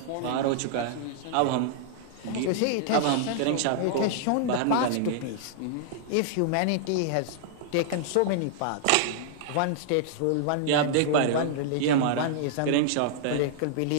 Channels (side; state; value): both; different; correlation -0.01